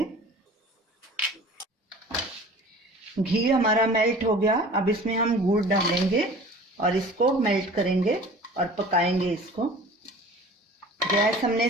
घी हमारा मेल्ट हो गया, अब इसमें हम गुड़ डालेंगे और इसको मेल्ट करेंगे और पकाएंगे इसको। गैस हमने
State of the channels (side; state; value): both; normal; correlation 0.43